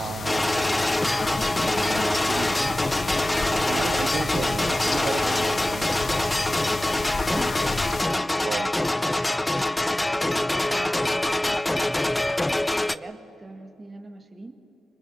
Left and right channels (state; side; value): normal; both; correlation 0.97